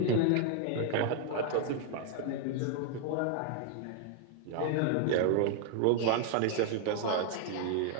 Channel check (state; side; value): different; both; correlation 0.00